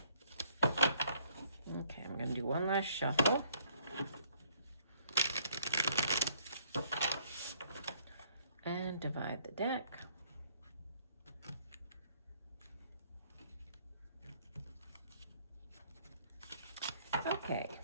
Okay, I'm going to do one last shuffle. And divide the deck. Okay,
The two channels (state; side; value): inverted; both; correlation -0.64